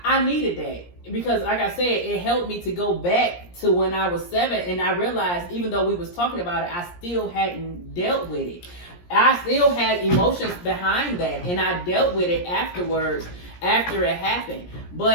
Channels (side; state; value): right; late; 17 ms